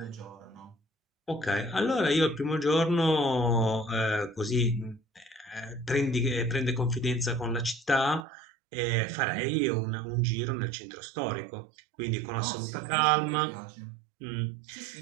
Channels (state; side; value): drops out; left; at 8.2 s